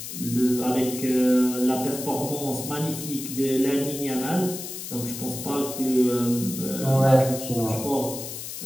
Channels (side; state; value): left; noise; hiss, 8 dB below the sound